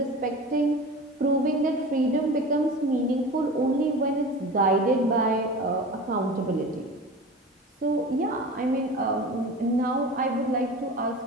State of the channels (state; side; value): normal; both; correlation 0.34